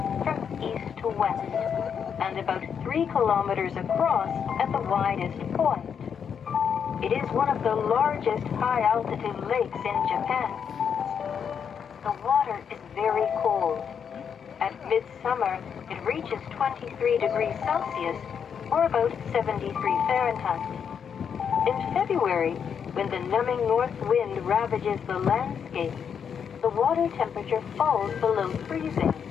from east to west, and about 3 kilometers across at the widest point. It is one of the largest high-altitude lakes in Japan. The water is very cold. At midsummer, it reaches 23 degrees Celsius, or about 73 Fahrenheit. In February, when the numbing north wind ravages the landscape, the water temperature falls below freezing,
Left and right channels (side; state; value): right; quieter; 7.3 dB